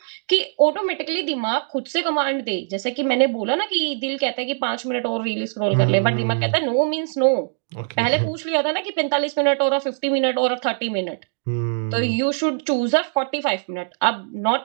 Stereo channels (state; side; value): silent; left; digital silence